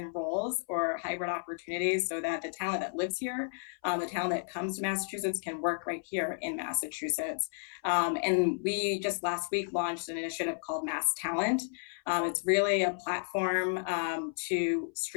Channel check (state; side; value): silent; right; 56 dB below the other